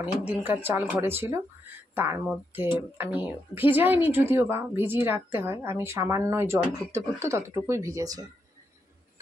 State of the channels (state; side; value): normal; both; correlation 0.82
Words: অনেক দিনকার চাল ঘরে ছিল, তার মধ্যে আমি ভিজাইনি, যদিও বা ভিজিয়ে রাখতে হয়, আমি সামান্য জল ফুটতে ফুটতে ততটুকুই ভিজেছে,